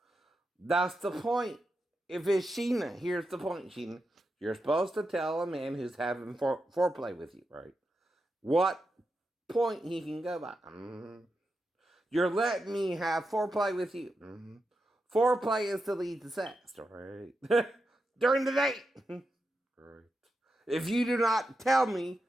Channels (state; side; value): normal; both; correlation 0.88